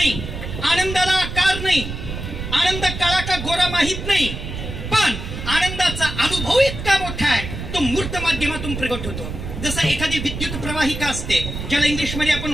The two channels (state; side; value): noise; right; rumble, 7 dB below the sound